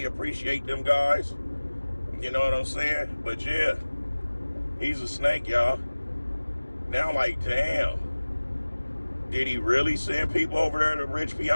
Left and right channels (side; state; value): both; inverted; correlation -1.00